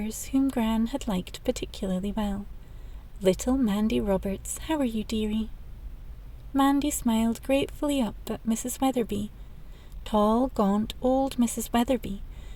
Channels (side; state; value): both; identical; correlation 1.00